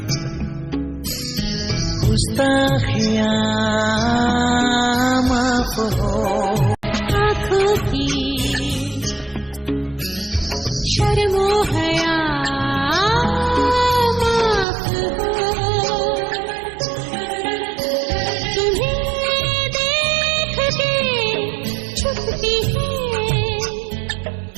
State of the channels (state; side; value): drops out; left; at 14.7 s